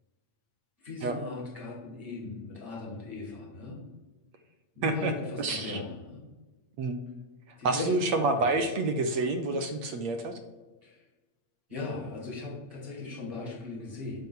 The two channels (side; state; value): left; late; 8.7 ms